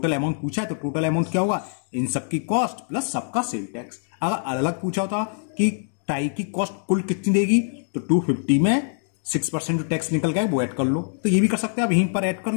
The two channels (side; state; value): right; silent; digital silence